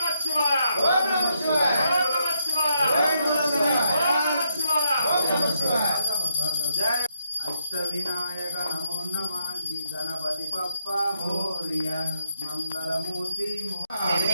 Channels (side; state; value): both; inverted; correlation -0.79